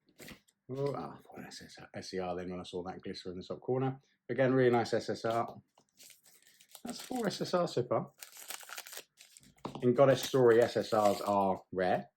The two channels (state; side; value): identical; both; correlation 1.00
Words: Oh, I thought SCR then when I saw that glitter in the top corner. Again, really nice SSR. That's 4 SSRs so far. In Goddess Story, SSRs are rare,